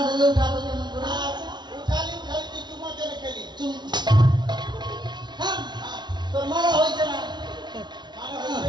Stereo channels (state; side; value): late; left; 0.21 ms